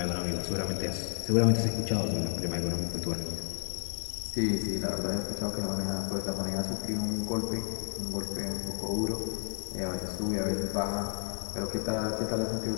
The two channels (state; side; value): quieter; right; 39.8 dB